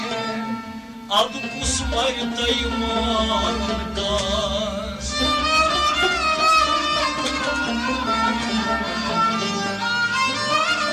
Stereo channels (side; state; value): both; identical; correlation 1.00